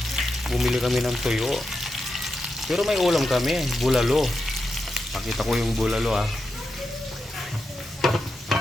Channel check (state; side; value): normal; both; correlation 0.88